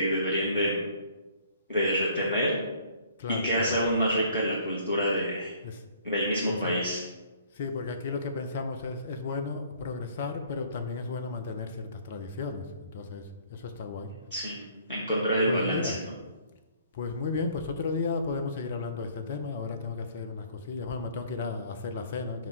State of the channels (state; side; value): inverted; both; correlation -0.58